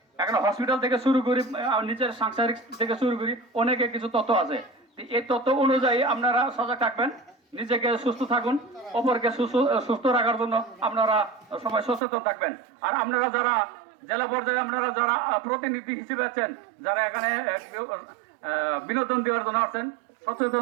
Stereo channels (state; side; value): drops out; left; at 12.0 s